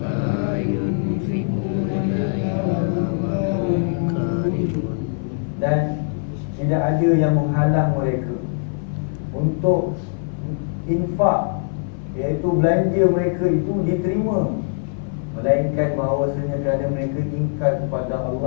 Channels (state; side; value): silent; right; 58 dB below the other